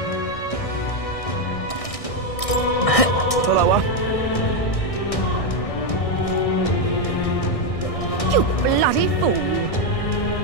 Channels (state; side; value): late; right; 1.6 ms